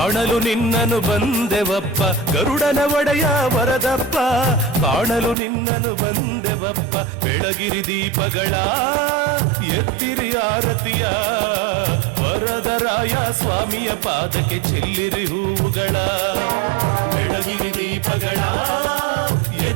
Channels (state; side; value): drops out; left; at 5.4 s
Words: ನಿನ್ನನು ಬಂದೆವಪ್ಪ. ಗರುಡನ ಒಡೆಯ ವರದಪ್ಪ, ಕಾಣಲು ನಿನ್ನನು ಬಂದೆವಪ್ಪ. ಬೆಳಗಿರಿ ದೀಪಗಳ ಎತ್ತಿರಿ ಆರತಿಯ, ವರದರಾಯ ಸ್ವಾಮಿಯ ಪಾದಕ್ಕೆ ಚೆಲ್ಲಿರಿ ಹೂವುಗಳ. ಬೆಳಗಿರಿ ದೀಪಗಳ